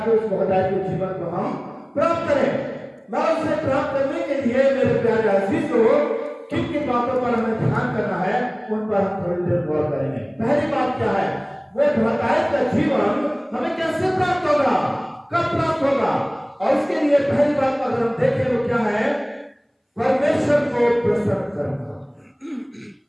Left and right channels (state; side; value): identical; both; correlation 1.00